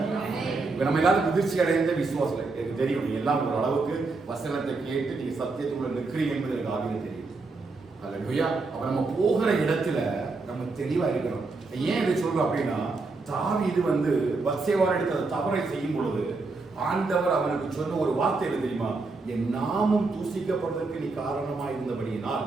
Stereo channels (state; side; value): quieter; left; 3.8 dB